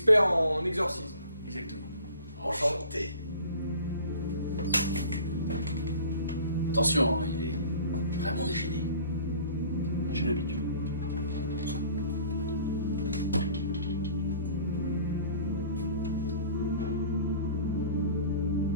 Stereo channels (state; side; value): inverted; both; correlation -0.47